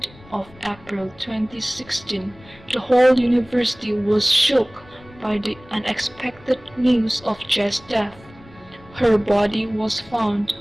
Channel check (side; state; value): left; noise; rumble, 24 dB below the sound